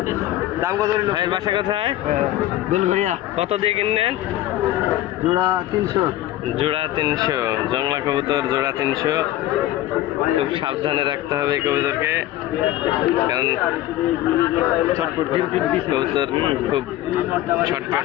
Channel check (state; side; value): quieter; right; 14.4 dB